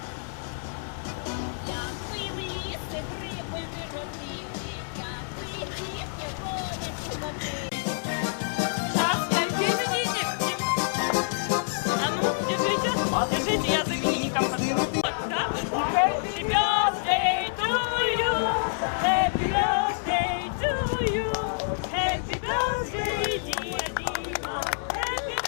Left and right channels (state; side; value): silent; right; 60 dB below the other